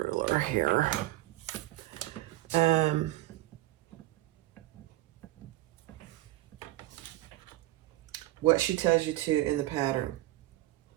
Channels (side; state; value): left; quieter; 17.1 dB